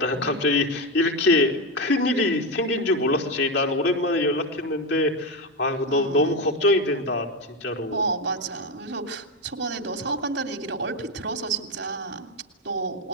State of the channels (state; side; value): normal; both; correlation 0.13